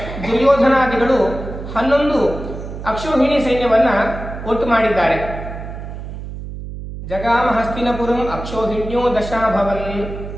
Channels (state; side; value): noise; right; hum, 9 dB below the sound